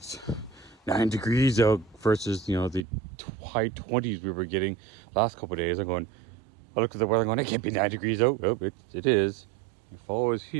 9 degrees out versus, you know, the high 20s we were getting last couple of days. I looked at the weather going, it can't be 9 degrees out. Oh, it is. The fall is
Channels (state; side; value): drops out; left; at 2.9 s